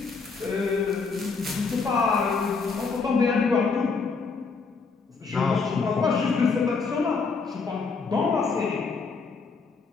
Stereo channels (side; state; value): right; quieter; 4.7 dB